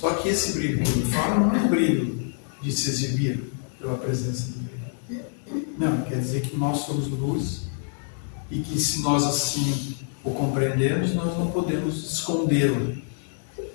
que esse brilho que ele fala não é um brilho de se exibir pela presença dele. Não, quer dizer que nós somos luz e que se nós assim o compreendemos, nós não podemos escondê-lo.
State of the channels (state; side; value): silent; right; digital silence